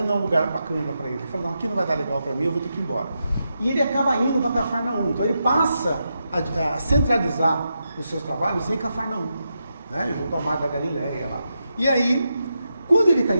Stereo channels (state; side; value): inverted; both; correlation -0.86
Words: é um lugar bacana para ele. Ele fala, não, aqui não vai dar legal para mim, eu vou ter que ir embora. E ele acaba indo para Cafarnaum. Então ele passa a centralizar os seus trabalhos em Cafarnaum, né? Junto ao Mar da Galileia lá. E aí, quando ele está